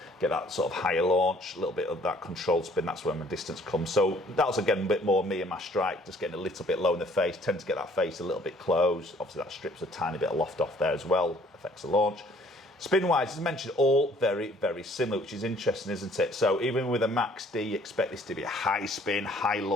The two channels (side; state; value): both; normal; correlation 0.58